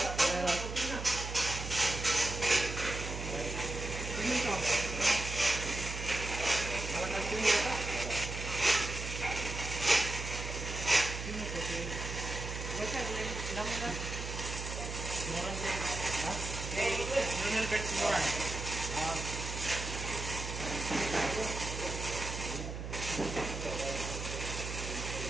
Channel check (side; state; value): right; noise; hum, 6 dB below the sound